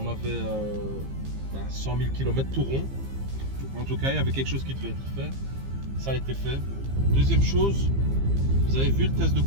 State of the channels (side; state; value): left; late; 15 ms